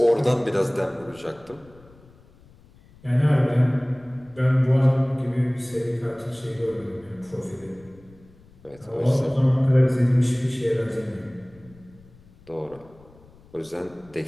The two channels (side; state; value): left; noise; rumble, 26 dB below the sound